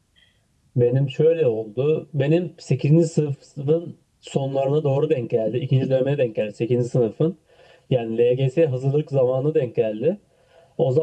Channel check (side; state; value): both; identical; correlation 1.00